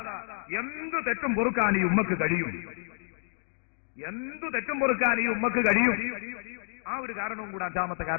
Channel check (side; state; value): right; silent; 58 dB below the other